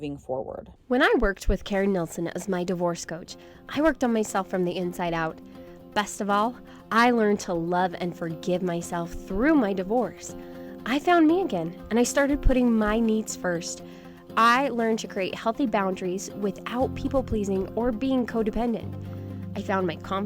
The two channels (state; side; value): identical; both; correlation 1.00